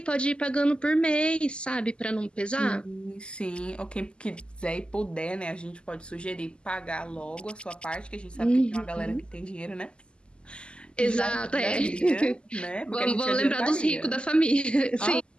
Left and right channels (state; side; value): late; right; 0.050 ms